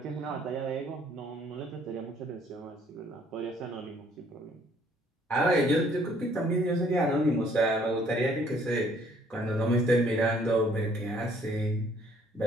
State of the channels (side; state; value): both; normal; correlation 0.62